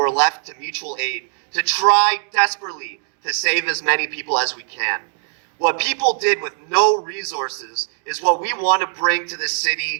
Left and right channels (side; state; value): left; silent; 65 dB below the other